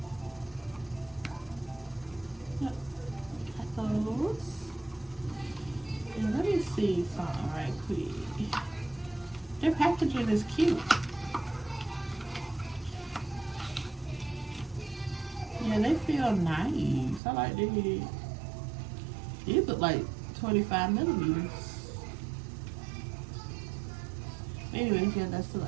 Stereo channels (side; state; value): left; drops out; at 17.2 s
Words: Yep, got those. And let me see something right quick. Their packaging is cute. Yeah, they feel nice. I like these. These look like 25 millimeters. Anyways, yeah, that's the